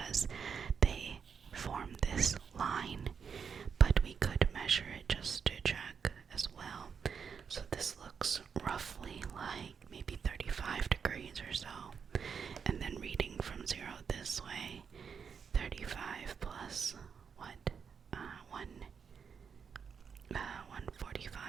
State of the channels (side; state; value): left; quieter; 6.5 dB